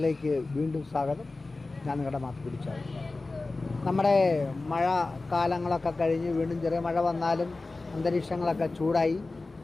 വീണ്ടും സ്വാഗതം. ഞാൻ നിങ്ങളുടെ മാത്ത് പിടിച്ചാൽ നമ്മുടെ മഴ കാലങ്ങളൊക്കെ കഴിഞ്ഞ് വീണ്ടും ചെറിയ മഴ വന്നാലും അന്തരീക്ഷങ്ങളൊക്കെ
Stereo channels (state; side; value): quieter; right; 3.4 dB